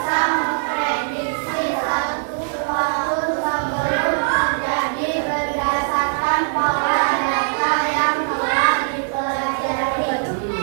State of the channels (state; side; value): silent; left; digital silence